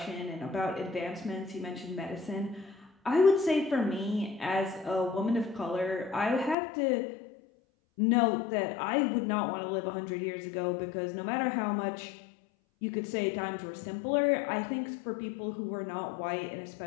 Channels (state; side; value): drops out; right; at 6.6 s